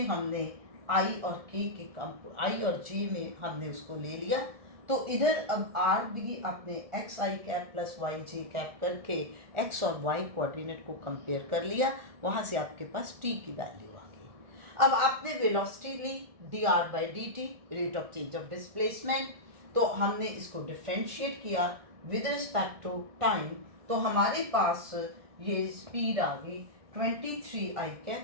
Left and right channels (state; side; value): late; left; 1.7 ms